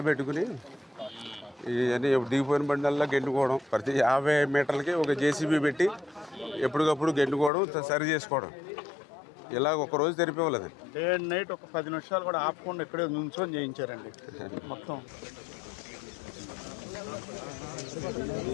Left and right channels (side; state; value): right; drops out; at 7.5 s